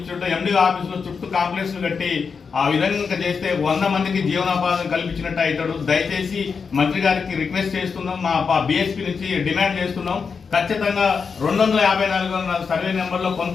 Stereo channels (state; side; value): quieter; right; 5.6 dB